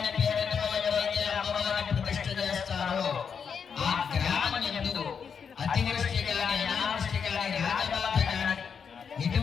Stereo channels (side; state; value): right; quieter; 6.6 dB